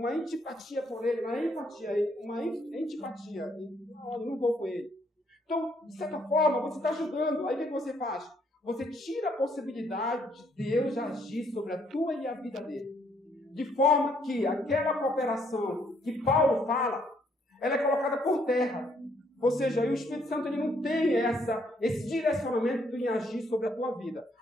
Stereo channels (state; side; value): normal; both; correlation 0.69